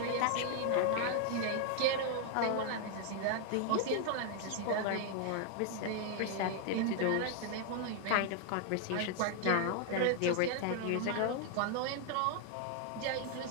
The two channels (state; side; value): different; both; correlation 0.00